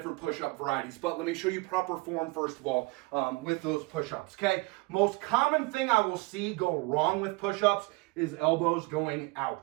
push-up varieties, but let me show you proper form first of all with those push-ups. Okay, most common thing I will see go wrong with push-ups is elbows going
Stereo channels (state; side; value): quieter; left; 25.2 dB